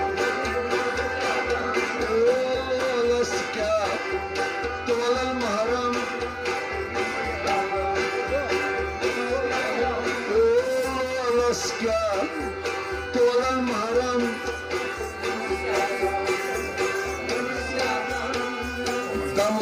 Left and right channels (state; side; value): identical; both; correlation 1.00